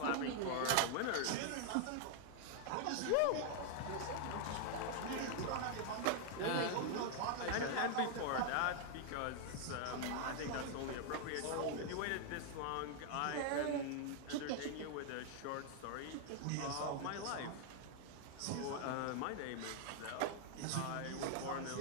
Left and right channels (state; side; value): different; both; correlation 0.00